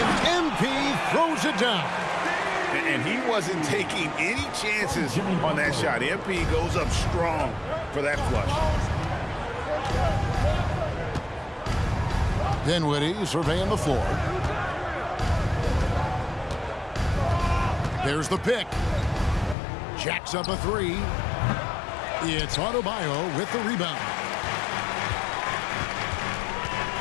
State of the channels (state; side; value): drops out; right; at 19.6 s